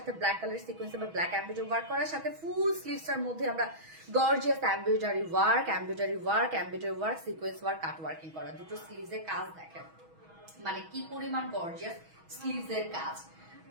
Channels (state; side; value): late; left; 6.2 ms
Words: ব্ল্যাক কালার সিকোয়েন্স বা ব্ল্যাক এমব্রয়ডারি ওয়ার্ক করার সাথে ফুল স্লিভসটার মধ্যে আমরা gorgeous embroidery work, sequence work, cut working করা, দুটো স্লিভসের কাজ দেখেন মানে কি পরিমাণ গর্জিয়াস স্লিভসের কাজ।